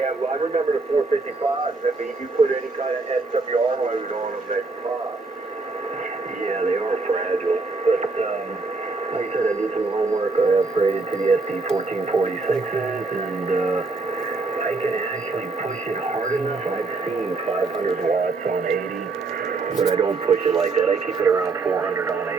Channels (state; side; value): quieter; left; 3.8 dB